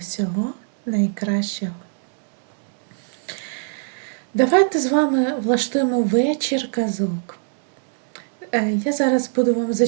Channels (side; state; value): left; silent; 63 dB below the other